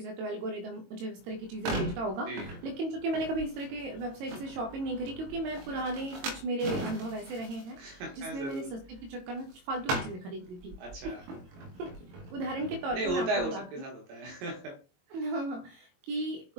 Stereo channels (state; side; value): late; left; 22 ms